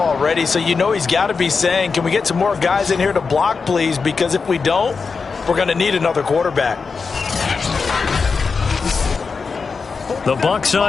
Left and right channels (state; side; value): quieter; right; 5.0 dB